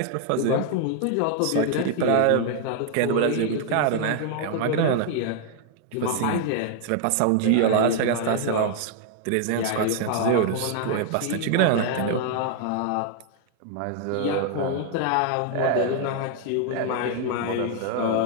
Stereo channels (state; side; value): different; both; correlation 0.00